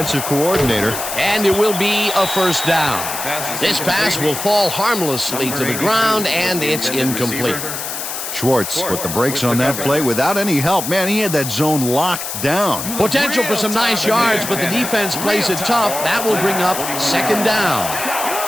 coordinator. And it will be a first down. This pass will fall harmlessly to the ground, and it's incomplete. Schwartz put the brakes on that play without any help. Man, he had that zone locked down. Potential for some nice yards, but the defense plays it tough. That will bring up second down.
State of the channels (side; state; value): left; noise; hiss, 6 dB below the sound